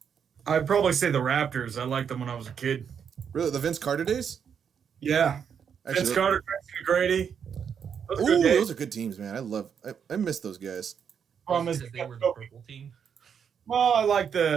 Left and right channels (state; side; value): quieter; left; 7.4 dB